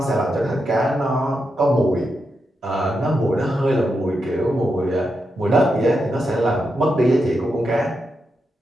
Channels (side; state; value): both; normal; correlation 0.85